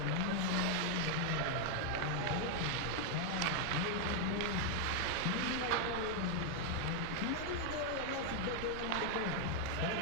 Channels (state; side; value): different; both; correlation 0.00